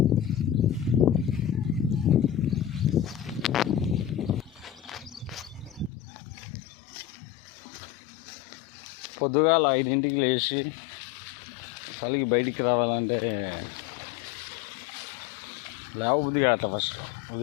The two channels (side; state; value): right; drops out; at 5.9 s